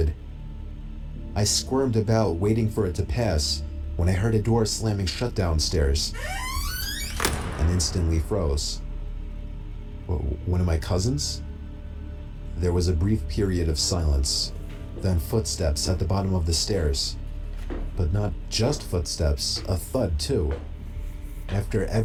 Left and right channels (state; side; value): identical; both; correlation 1.00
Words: I squirmed about, waiting for it to pass, when I heard a door slamming shut downstairs, and instantly froze. One of my cousins? There was a brief period of silence, then footsteps at the bottom of the stairs. But not just footsteps, a thud too. After